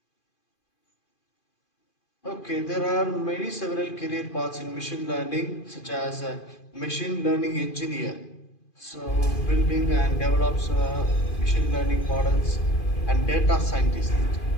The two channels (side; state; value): right; late; 2.5 ms